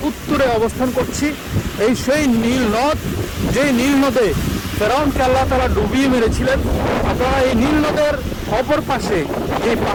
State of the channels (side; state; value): both; identical; correlation 1.00